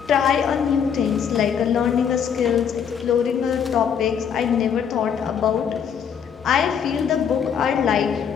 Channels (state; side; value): quieter; right; 7.6 dB